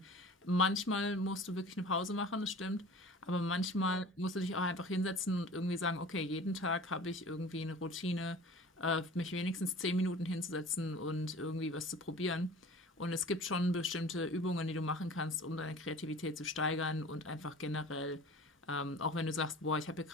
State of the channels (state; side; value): normal; both; correlation 0.42